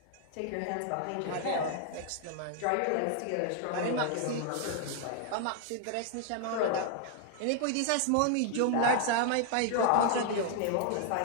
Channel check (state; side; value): different; both; correlation 0.00